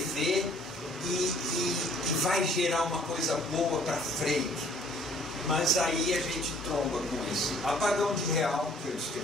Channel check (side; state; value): both; normal; correlation 0.57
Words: e vai gerar uma coisa boa para frente. Mas aí a gente tromba com esse apagão de real que eu